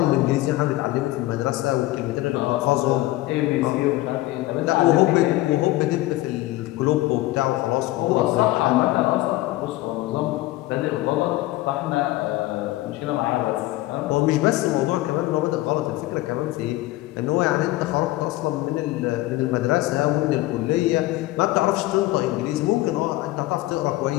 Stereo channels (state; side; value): quieter; right; 17.7 dB